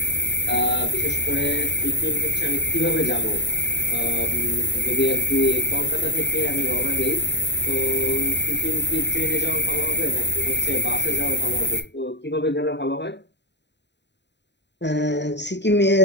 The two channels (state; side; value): late; right; 0.51 ms